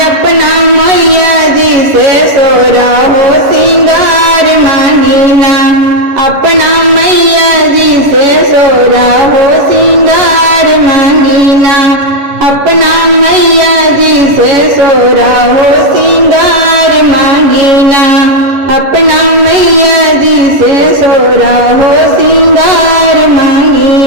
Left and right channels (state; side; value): late; left; 11 ms